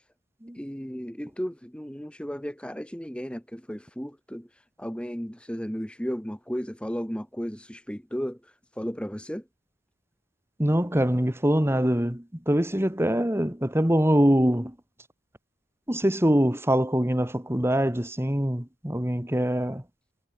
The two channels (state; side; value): normal; both; correlation 0.93